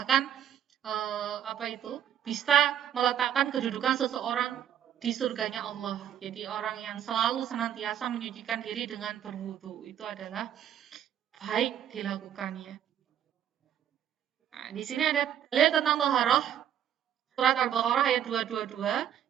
bisa meletakkan kedudukan seseorang di surganya Allah. Jadi orang yang selalu senantiasa menyucikan diri dengan berwudhu itu adalah baik dilakukannya. Nah, di sini ada dalil tentang taharah. Surat Al-Baqarah ayat 222,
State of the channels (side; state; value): left; quieter; 10.2 dB